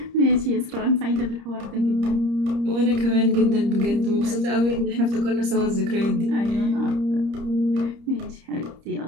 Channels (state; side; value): late; left; 30 ms